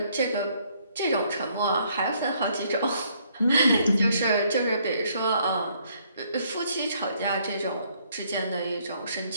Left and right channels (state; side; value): inverted; both; correlation -0.68